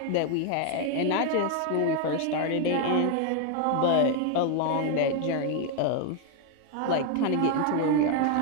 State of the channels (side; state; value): both; different; correlation 0.01